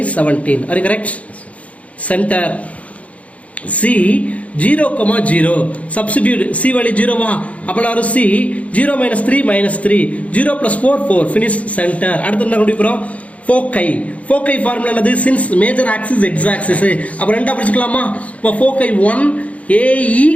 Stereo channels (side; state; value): right; late; 0.066 ms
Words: 17. Are you correct? Center. C 0, substitute C value 0 வா, அப்போ C 0 minus 3 minus 3, 0 plus 4 4, finish center. அடுத்து என்ன கண்டுபிடிக்கிறோம், foci. Foci formula என்னது, since major axis x axis, அப்போ ரெண்டா பிரிச்சுக்கலாமா. இப்போ foci 1 AE,